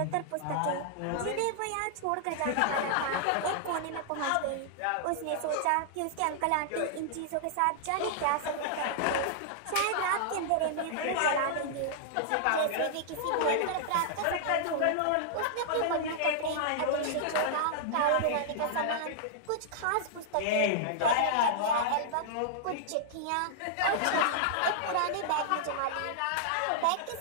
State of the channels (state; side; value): different; both; correlation -0.01